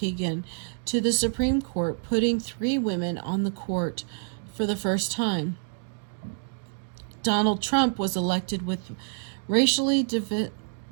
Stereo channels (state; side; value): silent; left; digital silence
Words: to the Supreme Court, putting 3 women on the court for the first time. Donald Trump was elected with racially